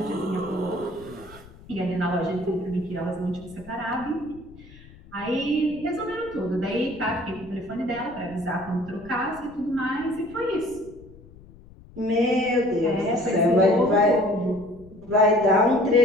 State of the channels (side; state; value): left; noise; rumble, 22 dB below the sound